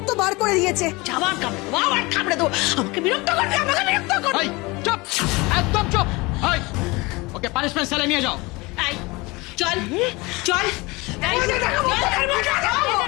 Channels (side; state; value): right; quieter; 24.1 dB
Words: বার করে দিয়েছে। আবার কামড়ে তো আমাকে বিরক্ত করবে, আমাকে বিরক্ত করবে। এই চুপ, একদম চুপ। এই ওকে পানিশমেন্ট সেলে নিয়ে যাও। এই চল চল।